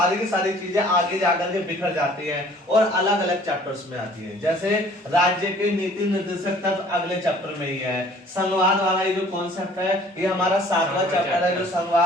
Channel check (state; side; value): normal; both; correlation 0.54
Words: की सारी चीजें आगे जाकर के बिखर जाती हैं और अलग अलग चैप्टर्स में आती हैं। जैसे राज्य के नीति निर्देशक तत्व अगले चैप्टर में ही है। संघवाद वाला ये जो कॉन्सेप्ट है ये हमारा 7वां चैप्टर है, जो